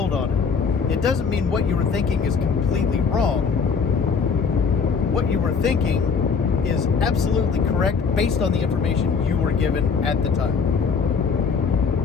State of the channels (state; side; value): quieter; right; 5.6 dB